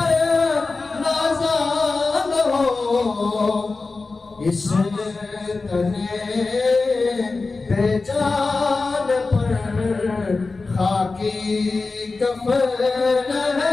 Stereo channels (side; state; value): right; quieter; 3.8 dB